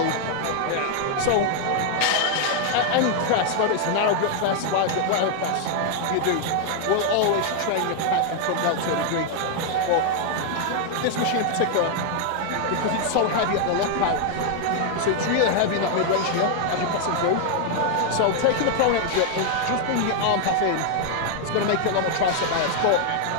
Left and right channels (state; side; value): different; both; correlation 0.00